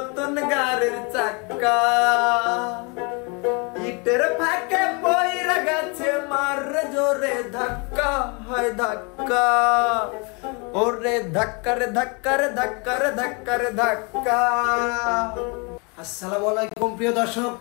গাড়ির চাক্কা ইটের ফাঁকে পইরা গেছে, মার জোরে ধাক্কা হয় ধাক্কা, ওরে ধাক্কা রে ধাক্কা রে ধাক্কা রে ধাক্কা রে ধাক্কা। আসসালামু আলাইকুম প্রিয় দর্শক,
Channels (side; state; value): right; quieter; 31.9 dB